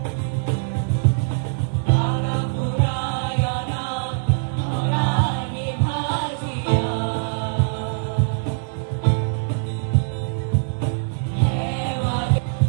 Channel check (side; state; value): left; silent; digital silence